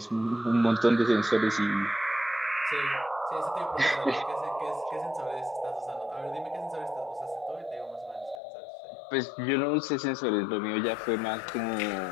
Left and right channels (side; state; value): right; drops out; at 8.4 s